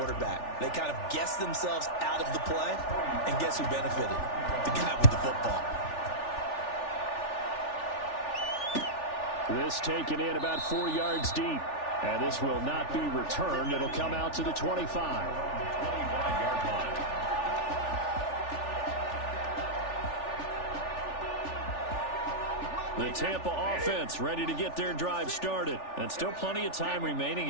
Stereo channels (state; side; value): late; right; 3.4 ms